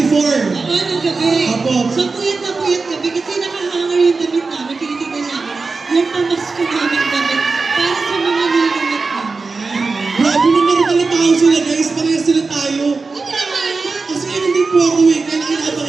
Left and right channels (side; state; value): left; quieter; 4.1 dB